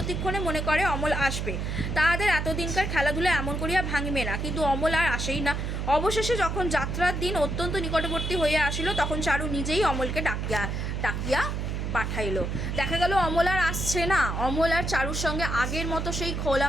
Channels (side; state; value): right; noise; hum, 2 dB below the sound